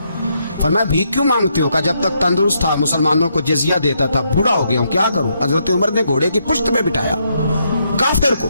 फरमाया भीख क्यों मांगते हो? कहा जब तक तंदुरुस्त था मुसलमानों को जजिया देता था, बूढ़ा हो गया हूँ क्या करूं? हजरत उमर ने घोड़े की पुश्त पे बिठाया, काफिर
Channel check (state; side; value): inverted; both; correlation -0.77